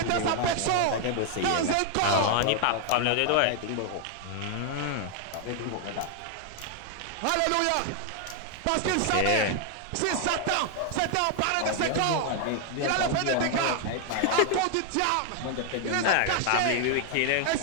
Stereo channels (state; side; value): different; both; correlation 0.00